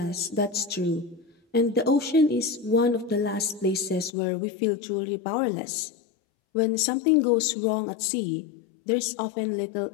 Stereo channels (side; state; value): right; drops out; at 4.1 s